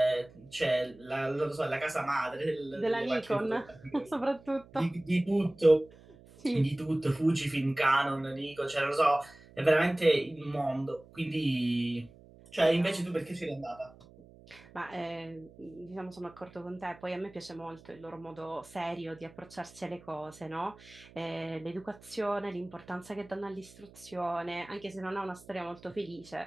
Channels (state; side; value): noise; right; hum, 23 dB below the sound